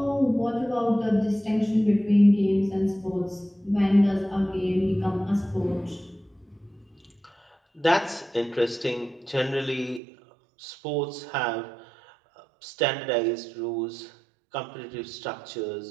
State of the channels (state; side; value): drops out; left; at 10.0 s